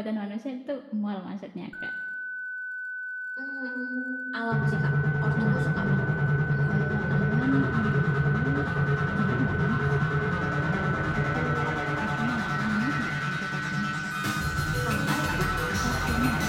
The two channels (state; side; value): identical; both; correlation 1.00